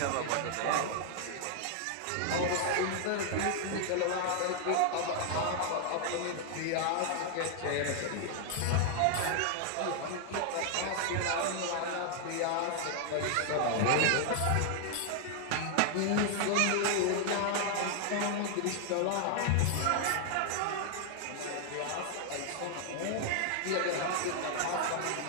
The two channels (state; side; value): different; both; correlation 0.00